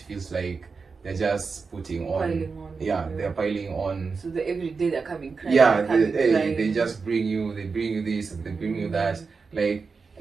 feels like they're just putting on. They're piling on. So every day they're coming crying. They just bring you this, they bring you that. Like,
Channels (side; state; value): left; quieter; 4.8 dB